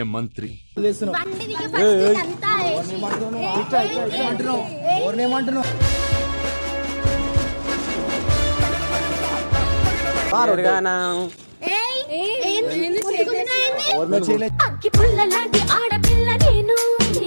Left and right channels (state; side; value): inverted; both; correlation -1.00